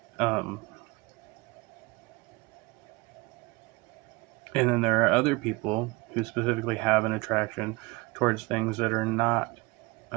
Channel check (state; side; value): quieter; left; 24.1 dB